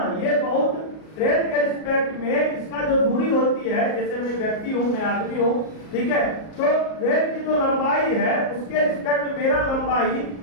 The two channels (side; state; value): right; late; 38 ms